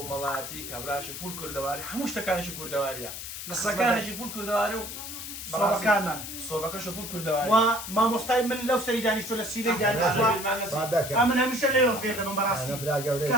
کابراچی فول کوردەواری هەموو شتەکانێکی کوردەواریە قسەکانێکی فول کوردەواری و سۆبەکانمان سۆبەکەشە فول کوردەواری و مامۆستای من لەو سەری دانیشتۆ لە سیرەی دانیشتووە من هەمیشە لێوە فێر دەبم بەڕاستی کە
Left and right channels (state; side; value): noise; left; hiss, 8 dB below the sound